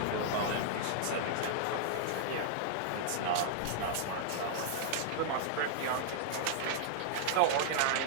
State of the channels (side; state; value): both; different; correlation -0.01